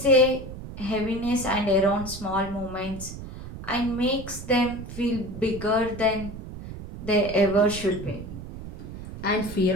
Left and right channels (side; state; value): right; noise; rumble, 11 dB below the sound